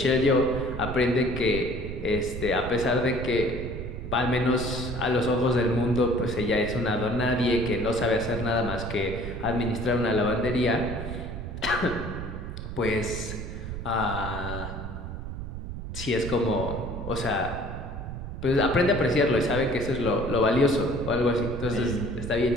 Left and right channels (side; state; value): right; noise; rumble, 7 dB below the sound